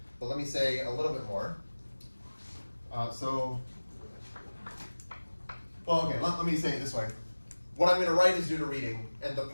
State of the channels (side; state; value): both; inverted; correlation -1.00